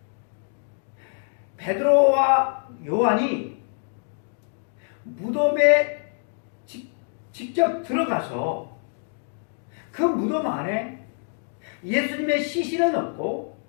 베드로와 요한이 무덤에 직접 들어가서 그 무덤 안에 예수님의 시신은 없고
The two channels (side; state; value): right; silent; 61 dB below the other